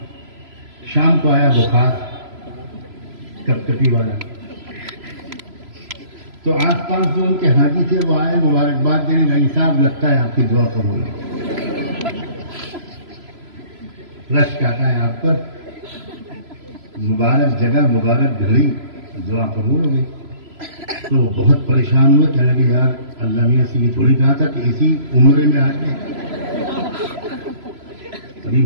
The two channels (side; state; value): left; late; 3.0 ms